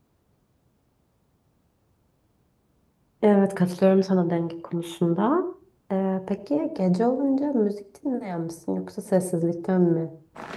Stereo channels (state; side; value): identical; both; correlation 1.00